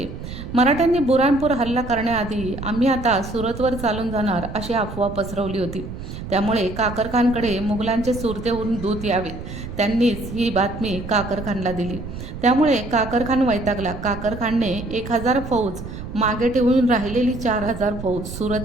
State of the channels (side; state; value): right; noise; rumble, 10 dB below the sound